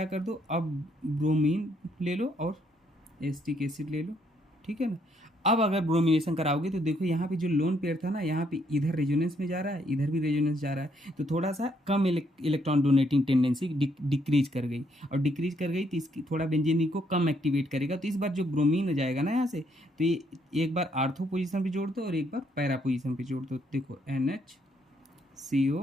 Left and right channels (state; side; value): normal; both; correlation 0.71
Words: कर दो, अब ब्रोमीन ले लो और एस्टिक एसिड ले लो, ठीक है ना। अब अगर ब्रोमिनेशन कराओगे तो देखो यहाँ पे जो लोन पेयर था ना, यहाँ पे इधर रेजोनेंस में जा रहा है, इधर भी रेजोनेंस जा रहा है, तो थोड़ा सा कम इलेक्ट्रॉन डोनेटिंग टेंडेंसी डिक्रीज कर गई, और डिक्रीज कर गई तो इसकी थोड़ा बेंजीन को कम एक्टिवेट करेगा। तो इस बार जो ब्रोमीन जाएगा ना यहाँ से, तो ये एक बार आर्थो पोजिशन पर जोड़ दो और एक बार पैरा पोजिशन पर जोड़ दो। देखो NH